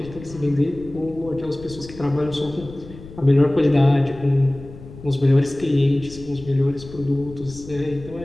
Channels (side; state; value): left; noise; rumble, 17 dB below the sound